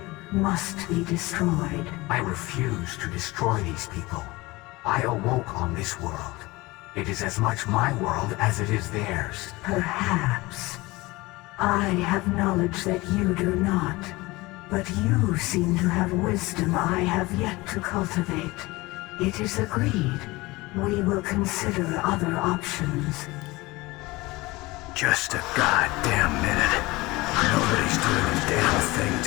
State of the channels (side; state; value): right; quieter; 21.7 dB